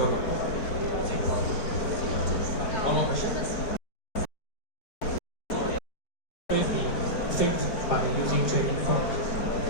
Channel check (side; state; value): right; late; 4.5 ms